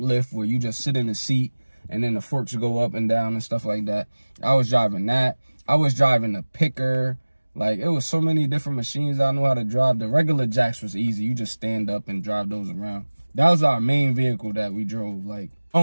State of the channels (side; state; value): both; inverted; correlation -1.00